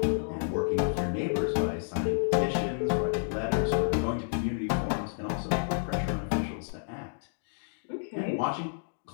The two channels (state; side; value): silent; right; digital silence